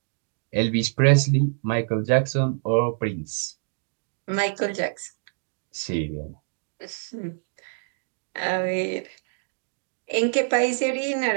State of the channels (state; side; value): silent; left; digital silence